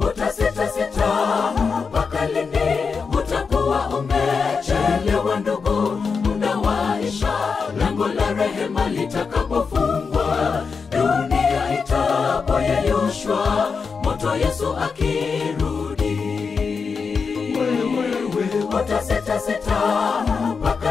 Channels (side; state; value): right; quieter; 5.3 dB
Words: mpaka lini? Utakuwa umechelewa ndugu, muda waisha, lango la rehema litakapofungwa, dunia itapoyeyushwa, moto Yesu akirudi. Utasita